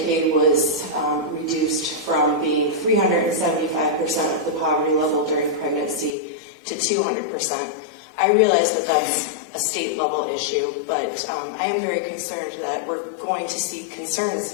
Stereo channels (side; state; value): right; drops out; at 6.2 s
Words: was reduced from being 375% of the poverty level during pregnancy to 200%. I realize that that's a state level issue, but I am very concerned that we're going to see concerns